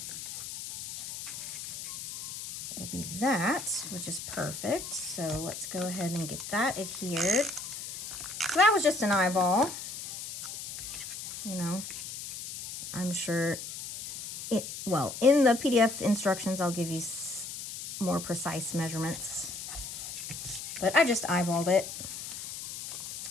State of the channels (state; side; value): noise; left; hiss, 8 dB below the sound